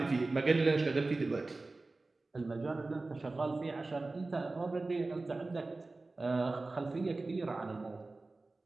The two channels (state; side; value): quieter; left; 3.3 dB